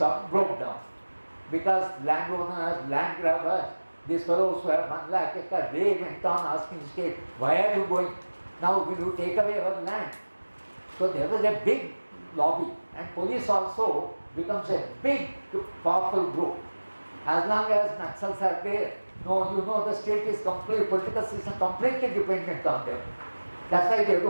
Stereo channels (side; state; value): both; inverted; correlation -1.00